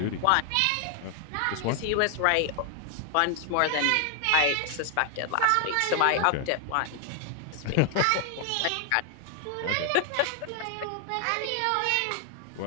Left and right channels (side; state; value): both; different; correlation 0.00